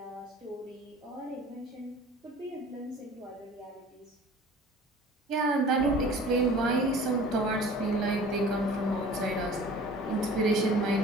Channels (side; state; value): both; normal; correlation 0.45